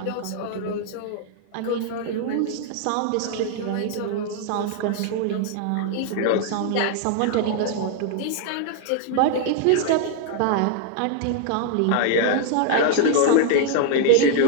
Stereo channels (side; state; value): both; different; correlation 0.00